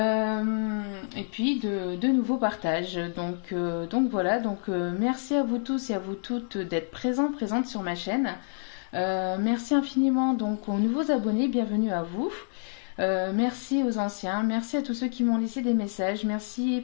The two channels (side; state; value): right; silent; 59 dB below the other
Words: puis de nouveaux partages. Donc voilà, merci à vous tous et à vous toutes d'être présentes sur ma chaîne. Merci infiniment donc aux nouveaux abonnés, bienvenue à vous. Merci aux anciens, merci à tous ceux qui m'ont laissé des messages, merci